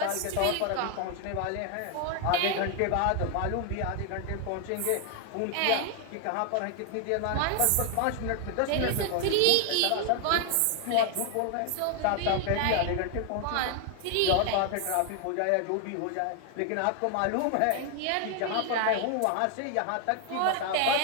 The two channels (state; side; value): different; both; correlation 0.00